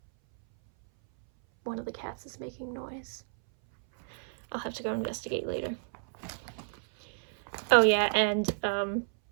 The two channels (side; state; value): left; silent; 57 dB below the other